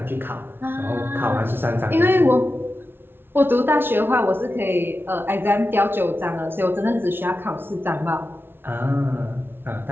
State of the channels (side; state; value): left; late; 0.11 ms